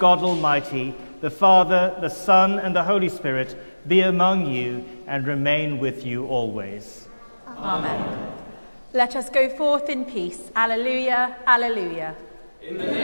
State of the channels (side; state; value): both; inverted; correlation -1.00